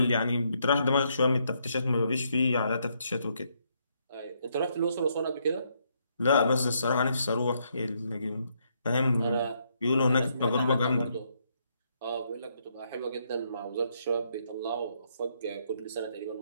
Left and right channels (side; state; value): both; inverted; correlation -0.74